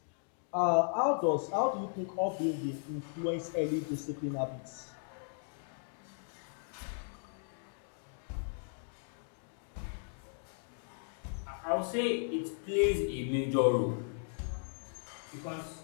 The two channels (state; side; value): silent; right; digital silence